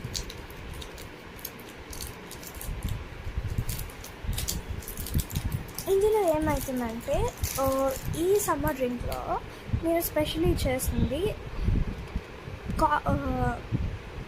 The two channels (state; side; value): identical; both; correlation 1.00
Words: ఇందులో ఏమవుతుందంటే ఈ సమ్మర్ డ్రింక్లో నేను స్పెషల్లీ చేస్తుంది